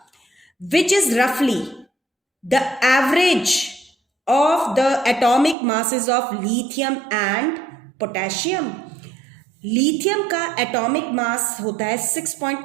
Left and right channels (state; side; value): drops out; left; at 5.6 s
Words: विच इज रफली the average of the atomic masses of lithium and potassium. Lithium का एटॉमिक मास होता है